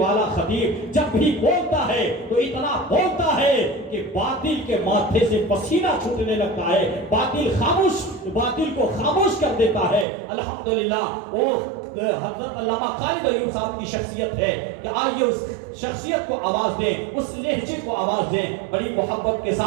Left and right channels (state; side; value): drops out; left; at 10.1 s